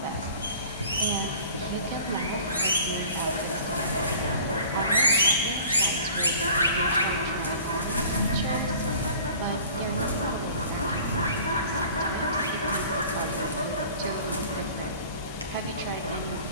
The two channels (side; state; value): both; inverted; correlation -0.46